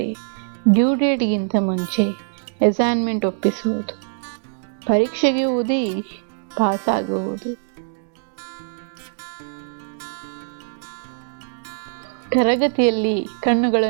ಡ್ಯೂ ಡೇಟ್ಗಿಂತ ಮುಂಚೆ ಅಸೈನ್ಮೆಂಟ್ ಒಪ್ಪಿಸುವುದು, ಪರೀಕ್ಷೆಗೆ ಓದಿ ಪಾಸಾಗುವುದು, ತರಗತಿಯಲ್ಲಿ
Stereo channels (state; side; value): silent; left; digital silence